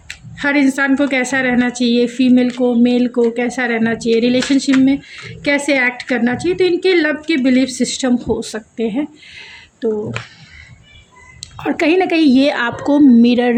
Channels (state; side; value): identical; both; correlation 1.00